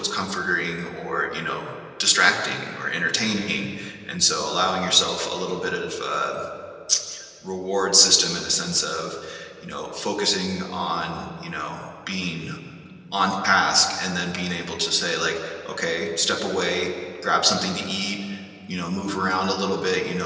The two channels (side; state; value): both; identical; correlation 1.00